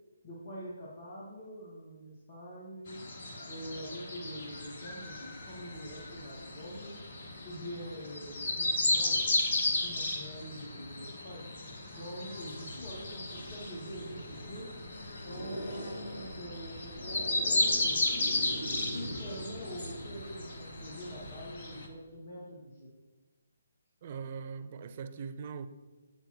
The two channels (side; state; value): both; inverted; correlation -0.79